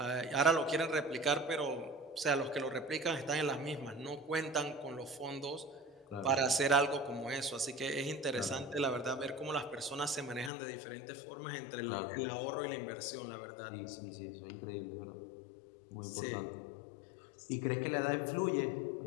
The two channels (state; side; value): drops out; right; at 10.5 s